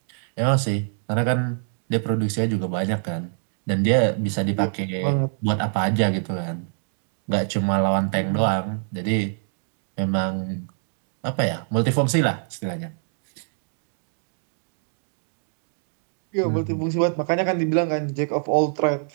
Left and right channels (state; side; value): silent; left; digital silence